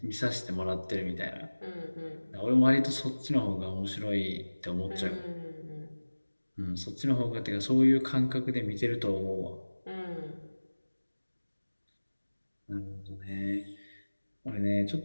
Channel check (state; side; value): inverted; both; correlation -1.00